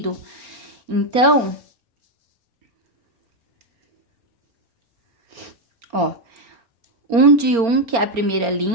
Então, ó, 1 de 1, que é a primeira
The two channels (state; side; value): late; left; 4.3 ms